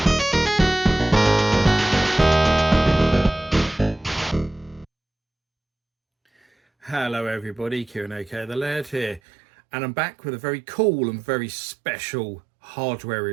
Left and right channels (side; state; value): left; drops out; at 9.2 s